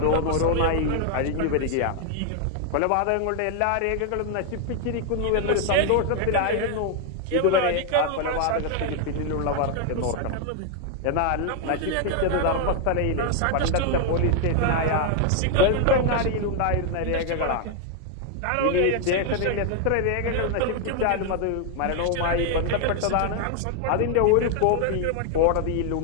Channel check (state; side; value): different; both; correlation 0.00